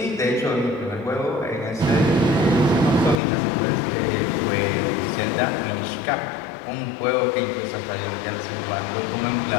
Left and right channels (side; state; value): right; drops out; at 3.2 s